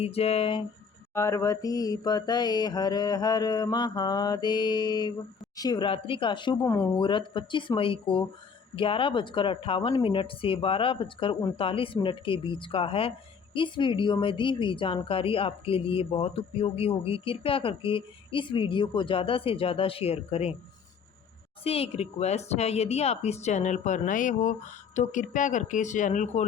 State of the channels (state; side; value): quieter; right; 6.0 dB